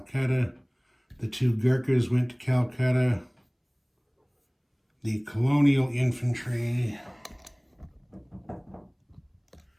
The 2 Gurkhas went to Calcutta. The colonial infantry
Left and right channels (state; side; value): identical; both; correlation 1.00